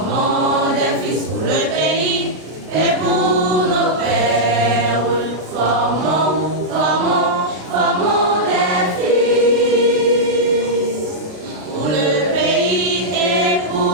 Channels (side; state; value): left; late; 33 ms